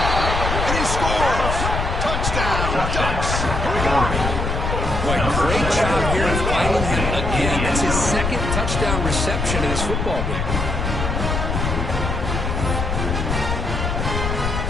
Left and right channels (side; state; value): left; noise; rumble, 1 dB below the sound